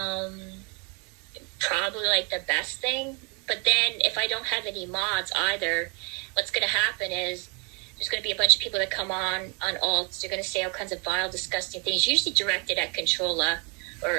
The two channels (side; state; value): left; quieter; 33.1 dB